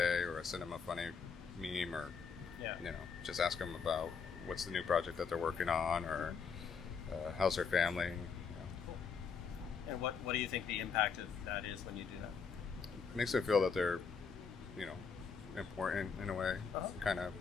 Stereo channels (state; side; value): quieter; right; 5.8 dB